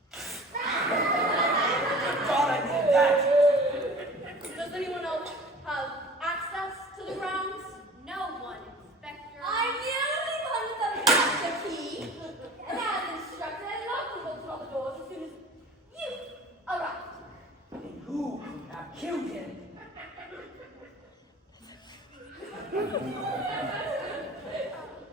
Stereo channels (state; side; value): normal; both; correlation 0.43